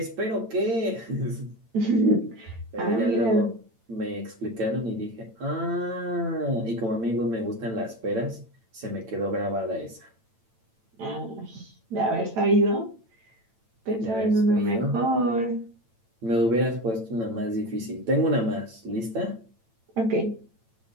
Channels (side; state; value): left; late; 8.9 ms